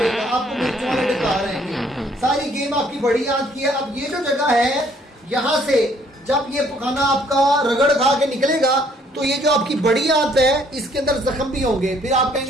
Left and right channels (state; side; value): normal; both; correlation 0.63